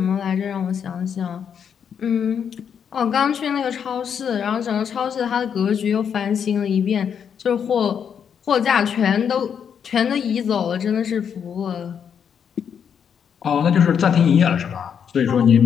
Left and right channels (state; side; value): quieter; right; 7.7 dB